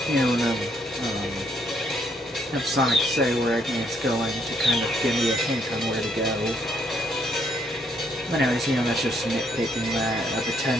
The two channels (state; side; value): normal; both; correlation 0.71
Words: Have Sonic say where it's going to kind of give me a hint on where to go. But anyways, that's just nitpicking that a